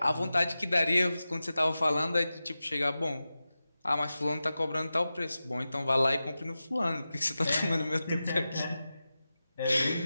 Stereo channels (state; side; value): inverted; both; correlation -0.94